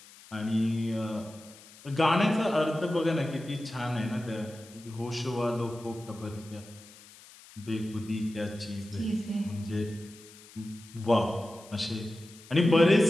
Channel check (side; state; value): left; noise; hiss, 21 dB below the sound